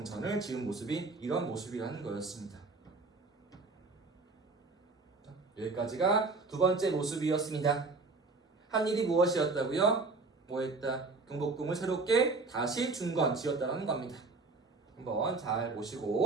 지은 모습이 이런 모습이라는 거였습니다. 여기까지가 두 번째 모습이었습니다. 한 일이 무엇이었다고요? 뭐했다? 경복궁을 새롭게 다시 중건 지었다는 겁니다. 한번 잘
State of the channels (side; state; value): left; quieter; 3.8 dB